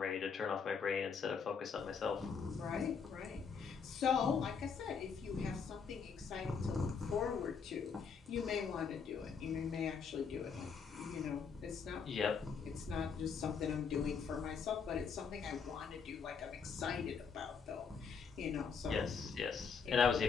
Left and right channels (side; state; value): right; quieter; 6.0 dB